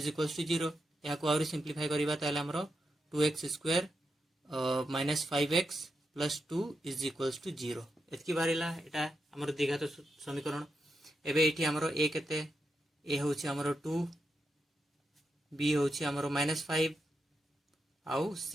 equals to 0 या को आउरी सिंप्लीफाई करिबा ताले हमरो 2x square minus 5x plus 2 is equals to 0 एतकी बारिला एटा हमर द्विघात समीकरण एबे एठी हमरो a केते a होछि हमरो 2 b होछि हमरो माइनस 5 आउ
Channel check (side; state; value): both; normal; correlation 0.85